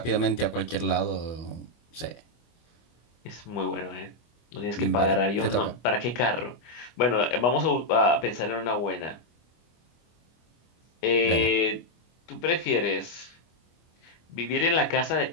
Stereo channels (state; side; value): late; right; 25 ms